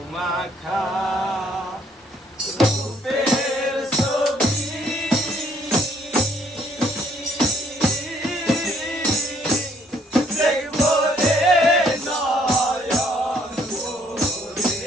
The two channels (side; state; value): both; normal; correlation 0.64